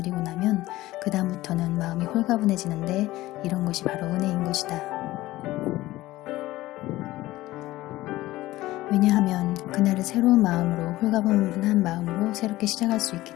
나면 그 다음부터는 마음이 홀가분해지는데, 이런 것이 바로 은혜인 것이다. 왜냐하면 그날을 새로운 마음으로, 홀가분한 마음으로 새롭게 시작할 수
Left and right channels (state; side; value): quieter; right; 17.2 dB